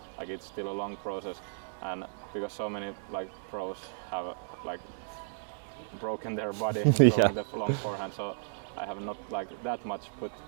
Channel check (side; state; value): left; silent; 55 dB below the other